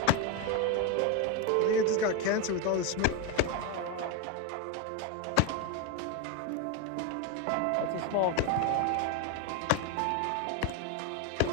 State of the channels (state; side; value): different; both; correlation 0.02